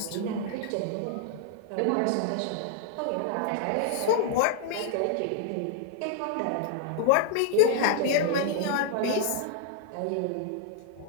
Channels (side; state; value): both; different; correlation 0.00